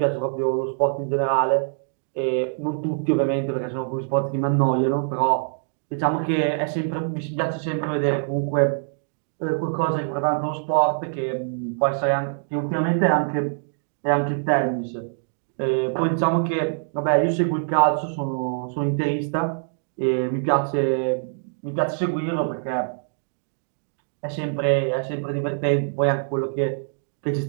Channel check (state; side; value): silent; left; digital silence